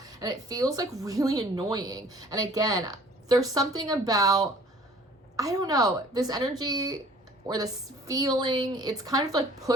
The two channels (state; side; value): normal; both; correlation 0.52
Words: And it feels like really annoying. And again, there's something about, I don't know, this energy or this feeling, it's kind of like